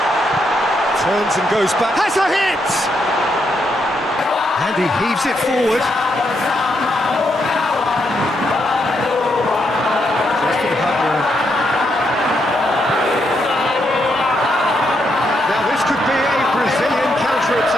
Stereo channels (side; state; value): both; normal; correlation 0.79